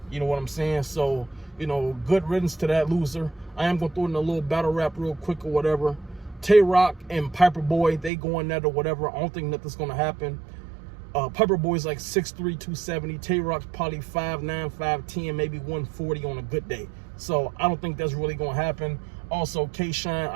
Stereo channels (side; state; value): left; drops out; at 8.1 s